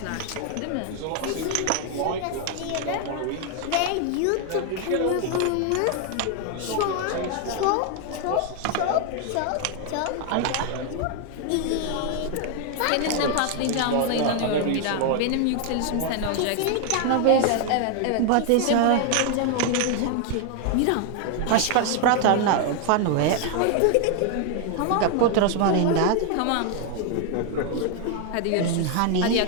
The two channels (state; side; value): different; both; correlation 0.00